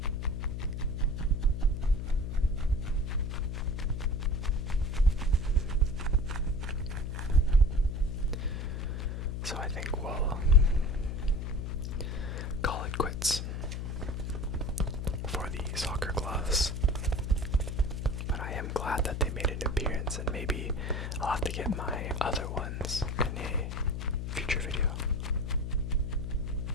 So I think we'll call it quits for the soccer gloves. But I am glad that they made an appearance, and maybe I'll have to get my other ones in a future video.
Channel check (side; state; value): left; noise; hum, 4 dB below the sound